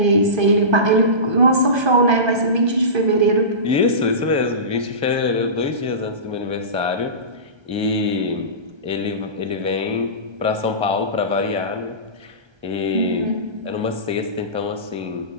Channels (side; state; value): left; late; 1.3 ms